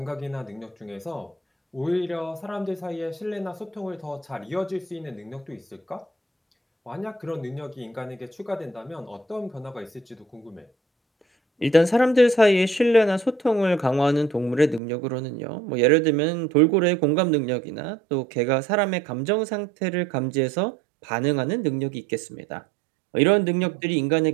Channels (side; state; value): left; drops out; at 14.8 s